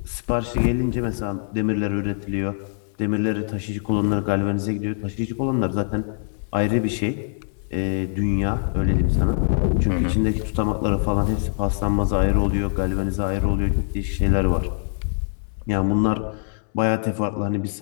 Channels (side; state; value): right; silent; 63 dB below the other